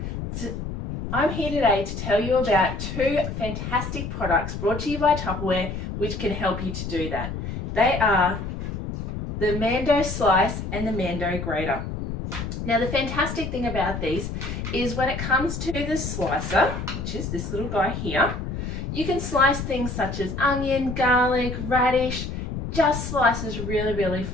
So I'm here today to tell you about two fantastic products brought to you by Tupperware which can help you to do that. They are the Mando Slice and the Mando Grater. Now the fantastic thing about these is when it comes to the slicer, which is this little guy here, you can slice things such as onion, garlic, radish, just slices really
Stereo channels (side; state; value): left; noise; rumble, 5 dB below the sound